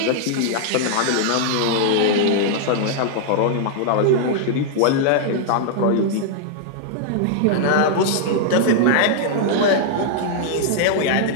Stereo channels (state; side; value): different; both; correlation -0.01